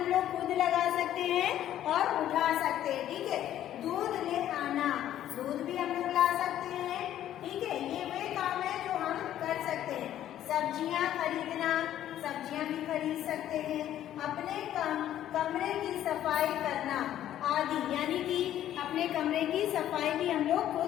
लोग खुद लगा सकते हैं और उठा सकते हैं, ठीक है। दूध ले आना, दूध भी हम लोग ला सकते हैं, ठीक है। ये वे काम है जो हम कर सकते हैं। सब्जियां खरीदना, सब्जियां भी खरीद सकते हैं। अपने कमरे की सफाई करना आदि, यानी कि अपने कमरे की सफाई भी हम लोग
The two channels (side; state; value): right; quieter; 11.8 dB